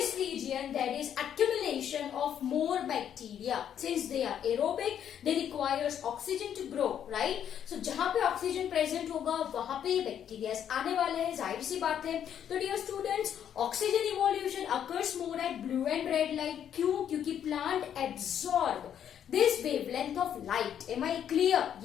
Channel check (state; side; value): quieter; right; 9.3 dB